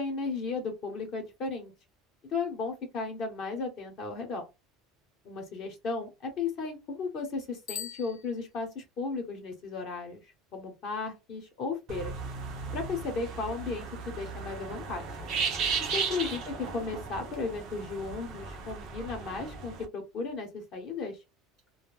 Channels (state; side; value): normal; both; correlation 0.32